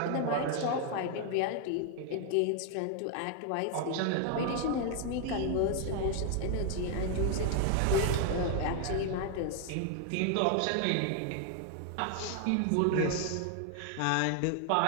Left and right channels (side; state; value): both; different; correlation 0.00